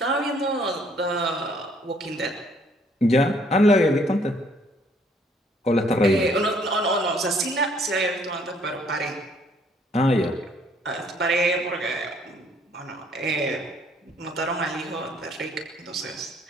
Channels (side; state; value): both; normal; correlation 0.63